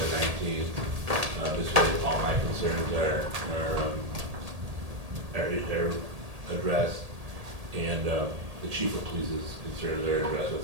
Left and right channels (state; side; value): late; left; 1.8 ms